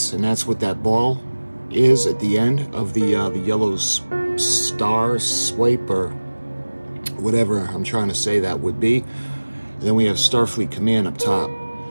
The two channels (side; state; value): both; inverted; correlation -1.00